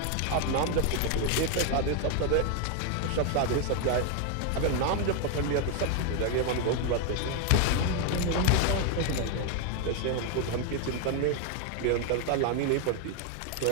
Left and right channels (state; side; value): different; both; correlation 0.01